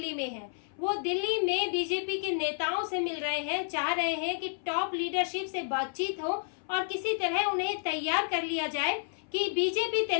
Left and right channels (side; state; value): right; silent; 57 dB below the other